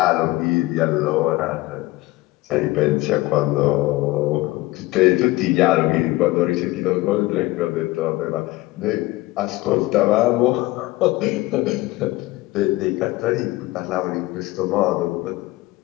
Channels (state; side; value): quieter; right; 19.3 dB